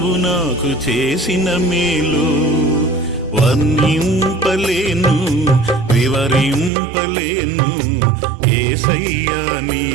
నాకు చేసిన మేలు. వర్ణింపలేను వివరింపలేను యేసయ్యా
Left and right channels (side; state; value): left; drops out; at 6.7 s